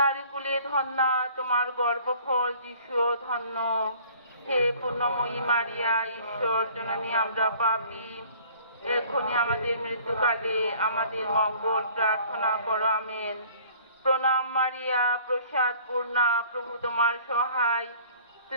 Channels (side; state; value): both; inverted; correlation -0.52